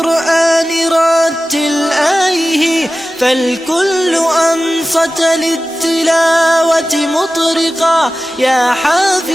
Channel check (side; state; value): both; normal; correlation 0.95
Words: رتل آيه فالكل أنصت للتلاوة مطرقا يا